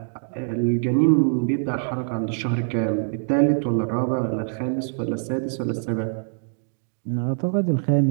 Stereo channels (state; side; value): silent; left; digital silence